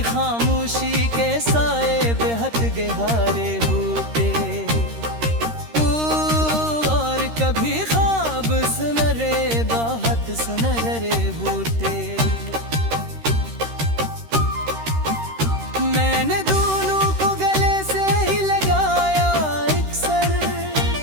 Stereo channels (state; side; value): late; left; 13 ms